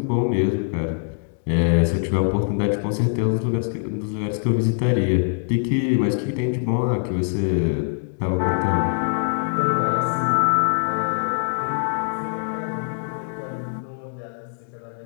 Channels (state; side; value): silent; right; digital silence